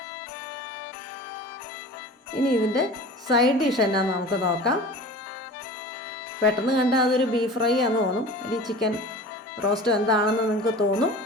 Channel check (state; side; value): normal; both; correlation 0.38